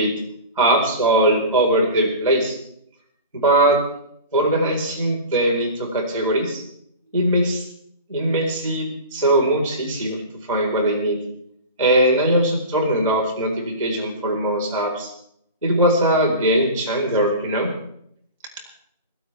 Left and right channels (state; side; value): inverted; both; correlation -0.33